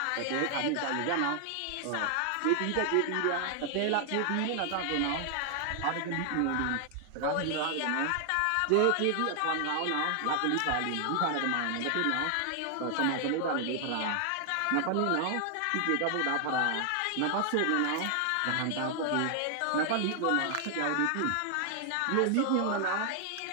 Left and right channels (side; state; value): both; different; correlation 0.00